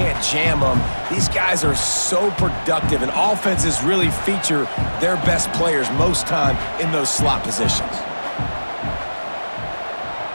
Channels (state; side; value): inverted; both; correlation -1.00